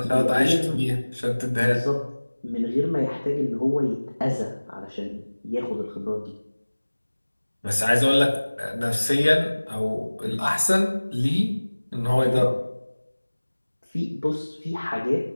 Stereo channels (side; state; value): both; inverted; correlation -1.00